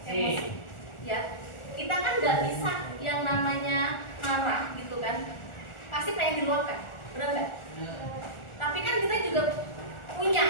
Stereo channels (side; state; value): right; late; 1.4 ms